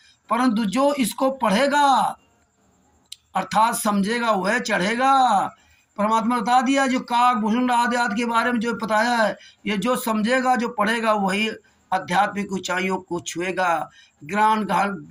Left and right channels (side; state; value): both; identical; correlation 1.00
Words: परंतु जो इसको पढ़ेगा अर्थात समझेगा वह चढ़ेगा। परमात्मा बता दिया जो काकभूषण आदि आदि के बारे में जो बताया है, ये जो समझेगा जो पढ़ेगा वही आध्यात्मिक ऊंचाइयों को छुएगा, ज्ञान